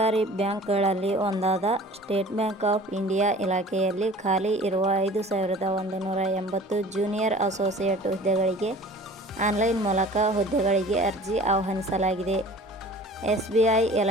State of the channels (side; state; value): both; normal; correlation 0.45